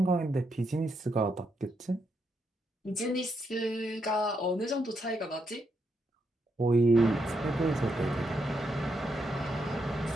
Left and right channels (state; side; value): normal; both; correlation 0.80